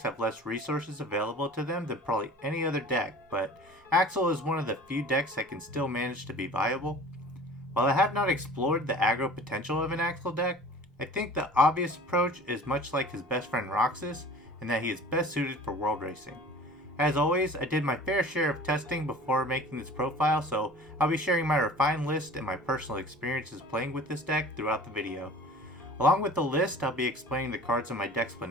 have less resources available to them than probably any other deck, but Axel is one of the few decks that can still manage to be viable. While I have not explored the aggro potential of an Axel deck, I think the obvious approach is much like his best friend Roxas, in that he is best suited for world racing. As always, I did my fair share of testing before making this profile, so I'll be sharing my refined list and my personal experiences playing with this deck throughout the video. Along with the list, I'll be explaining the cards in my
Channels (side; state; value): both; normal; correlation 0.43